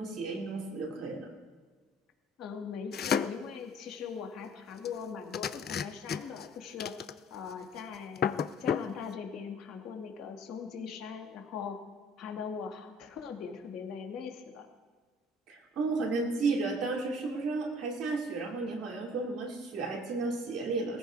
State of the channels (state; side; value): normal; both; correlation 0.52